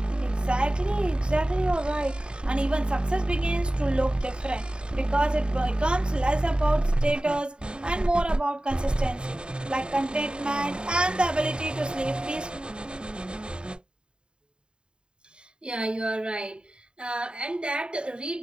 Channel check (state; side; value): late; left; 0.051 ms